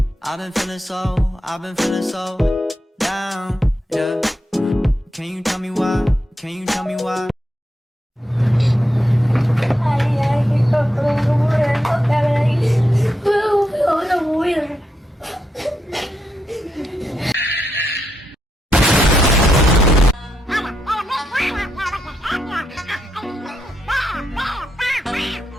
I've been feeling so down, yeah. Can you tell me why? Can you tell me why? Ay, kita keluar hotel lagi. Udah buir.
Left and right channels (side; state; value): both; normal; correlation 0.83